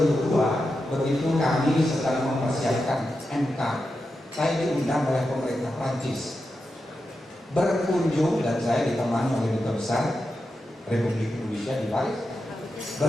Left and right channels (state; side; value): normal; both; correlation 0.89